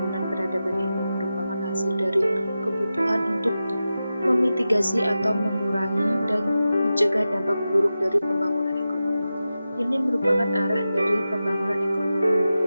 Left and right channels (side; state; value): both; inverted; correlation -0.93